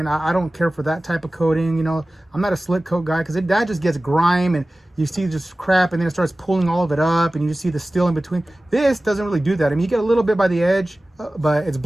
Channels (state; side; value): normal; both; correlation 0.97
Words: I don't care for that type of coating. You know, I'm not a slick coat guy because that just gets grime and you see just crap and then it starts pulling all of it up and you just see the steel in between. This doesn't really do that. I mean, you get a little bit by the edge, but it's